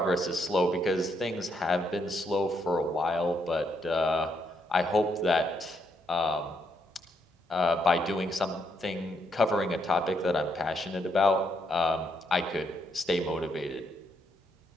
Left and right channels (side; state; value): both; normal; correlation 0.76